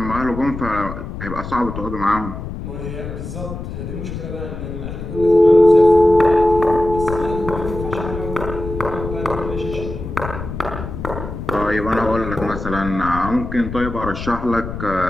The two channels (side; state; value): left; noise; rumble, 8 dB below the sound